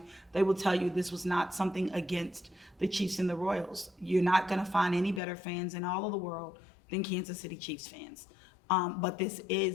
they will tell you this was not something against the Chiefs and the Royals. You're not gonna find any better fans in all of the world than Kansas City Chiefs fans. But this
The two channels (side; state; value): right; drops out; at 5.2 s